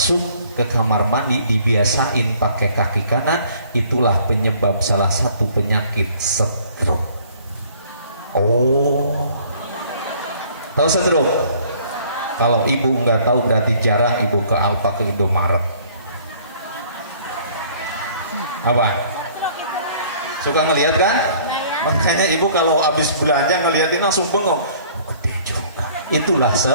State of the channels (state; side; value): inverted; both; correlation -0.56